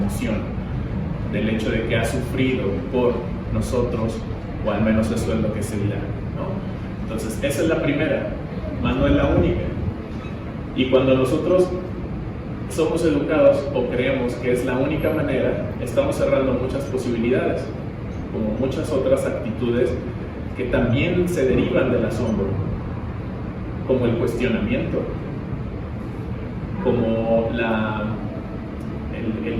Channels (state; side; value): identical; both; correlation 1.00